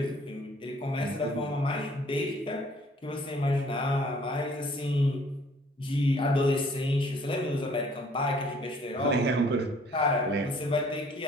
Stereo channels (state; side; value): normal; both; correlation 0.58